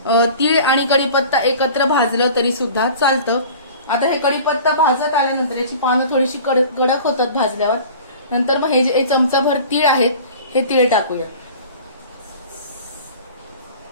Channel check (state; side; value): inverted; both; correlation -0.42